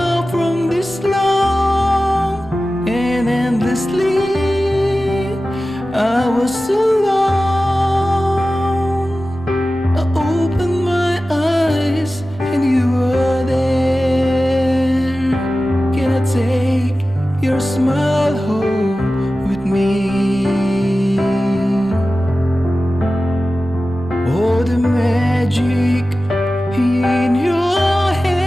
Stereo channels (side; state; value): both; normal; correlation 0.95